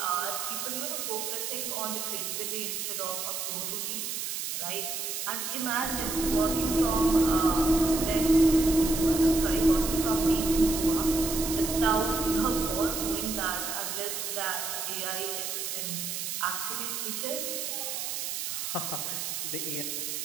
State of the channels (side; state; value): right; noise; hiss, 3 dB below the sound